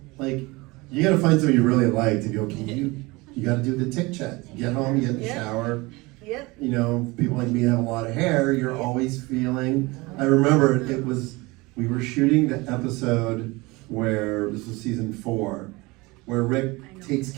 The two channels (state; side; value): quieter; left; 23.4 dB